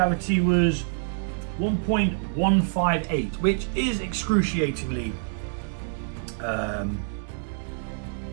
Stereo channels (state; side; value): silent; left; digital silence